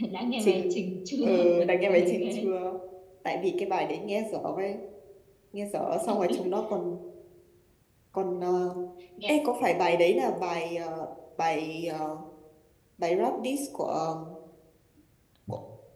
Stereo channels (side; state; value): both; identical; correlation 1.00